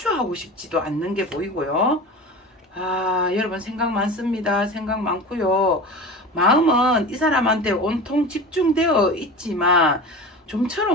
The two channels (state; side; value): normal; both; correlation 0.32